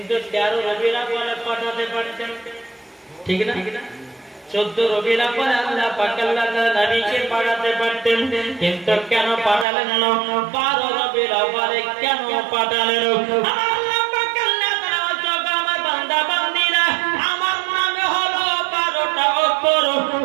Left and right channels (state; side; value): drops out; left; at 9.7 s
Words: 13 রবিউল আউয়ালে পাঠাতে পারতেন, ঠিক না? 14 রবিউল আউয়ালে আল্লাহ পাক আল্লাহ তাআলা নবীকে পাঠাতে পারতেন, কিন্তু কেন পাঠালেন না? 12 রবিউল আউয়ালে কেন পাঠালেন? আল্লাহ পাক আল্লাহ তাআলা জগা আমার বান্দা বান্দীরা, আমার নামে হলো 12টা অক্ষর,